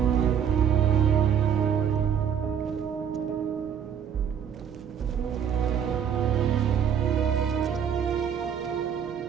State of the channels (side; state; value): left; quieter; 8.4 dB